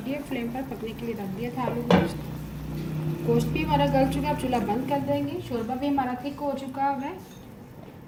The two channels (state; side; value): identical; both; correlation 1.00